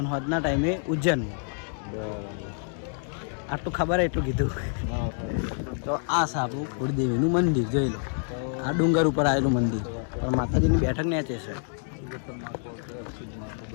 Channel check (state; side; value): silent; right; 60 dB below the other